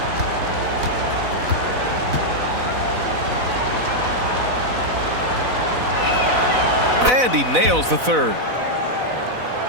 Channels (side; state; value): left; late; 4.0 ms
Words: And he nails the third.